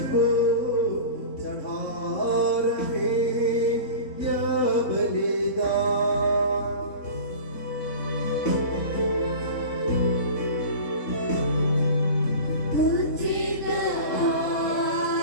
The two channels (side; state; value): right; late; 3.6 ms